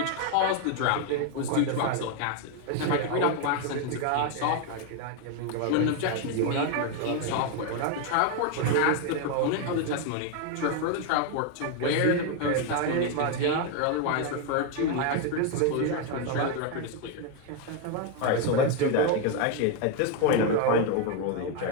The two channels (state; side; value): different; both; correlation 0.01